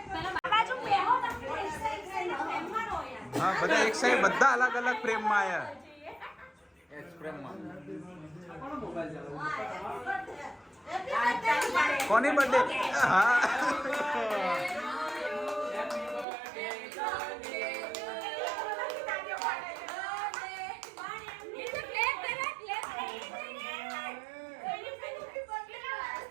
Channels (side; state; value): left; drops out; at 16.2 s